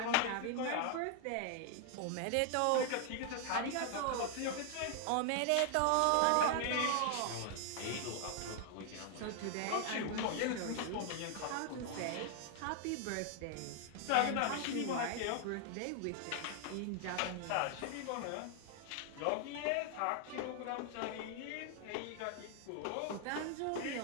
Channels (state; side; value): different; both; correlation 0.00